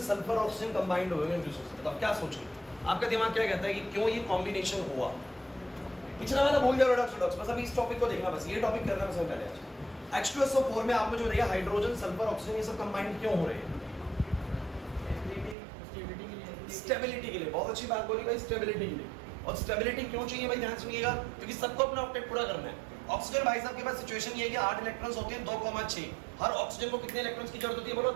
सल्फर ऑक्सीजन कंबाइंड हुए हैं? बताओ क्या सोच के, आपका दिमाग क्या कहता है कि क्यों ये कॉम्बिनेशन हुआ? पिछला वाला भूल जाओ रेडॉक्स रेडॉक्स, बस अभी इस टॉपिक को देखना, बस ये टॉपिक करना सबसे पहले आज। H2SO4 में आप मुझे बताइए हाइड्रोजन सल्फर ऑक्सीजन ये सब कंबाइंड क्यों हो रहे हैं? स्टेबिलिटी के लिए। बहुत अच्छी बात बोली भाई, स्टेबिलिटी के लिए। और स्टेबिलिटी क्यों चाहिए भाई? ध्यान सुनिएगा, क्योंकि सबको अपना ऑक्टेट पूरा करना है। ऑक्सीजन भाई साहब के पास सिचुएशन ये है कि 8 इलेक्ट्रॉन्स होते हैं 2,6। हर ऑक्सीजन को कितने इलेक्ट्रॉन्स की जरूरत होती है बोलो?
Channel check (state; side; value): drops out; left; at 15.6 s